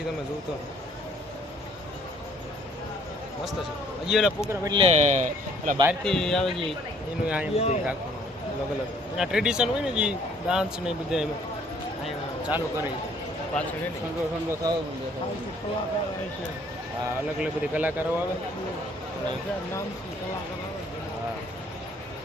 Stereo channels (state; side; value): normal; both; correlation 0.60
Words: તમે જોતો મસ્ત છે. હજી ઓલા પ્રોગ્રામ એટલે પેલા બહારથી આવે છે એનું અહીંયા બધું રાખવાનું અલગ અલગ એના ટ્રેડિશન હોય ને જે ડાન્સ ને બધા અહીંયા ચાલુ કરે પાછળ ઠંડો થાવ. હા અલગ અલગ બધી કલાકારો આવે. હા